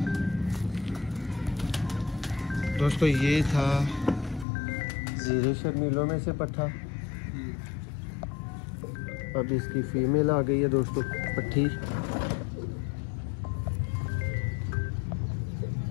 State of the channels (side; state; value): right; drops out; at 4.5 s